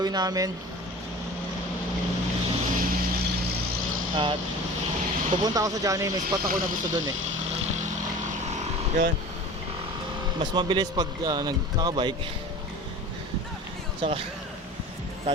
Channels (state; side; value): normal; both; correlation 0.38